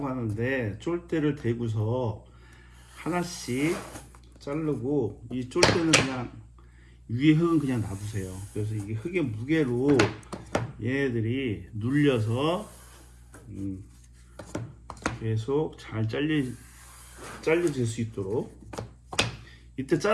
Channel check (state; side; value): identical; both; correlation 1.00